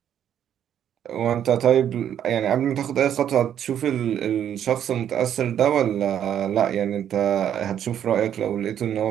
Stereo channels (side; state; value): left; quieter; 9.8 dB